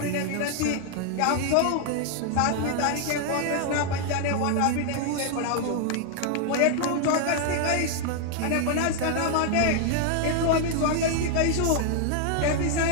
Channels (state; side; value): different; both; correlation 0.00